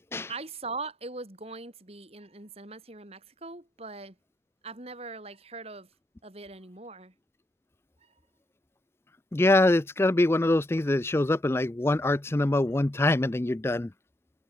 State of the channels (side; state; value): both; normal; correlation 0.79